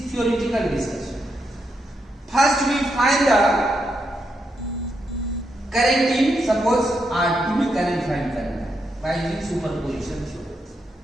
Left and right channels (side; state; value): both; normal; correlation 0.82